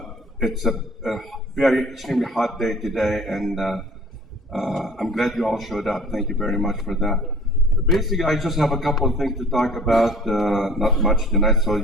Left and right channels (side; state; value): both; normal; correlation 0.48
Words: it's a very extremely hot day today, and I'm glad you all showed up. Thank you very much for that. Basically, I just have a couple of things to talk about. Not much tonight, so